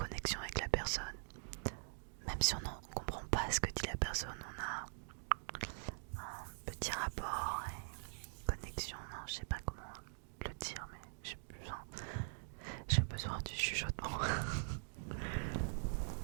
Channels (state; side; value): silent; left; digital silence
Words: avec la personne. Même si on ne comprend pas ce que dit la personne, on a un petit rapport et connexion. Non, je sais pas comment le dire, mais j'ai besoin du chuchotement.